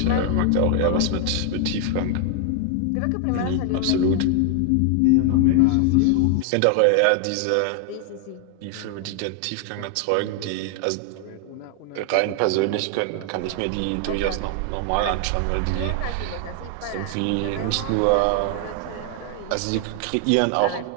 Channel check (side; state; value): both; different; correlation 0.00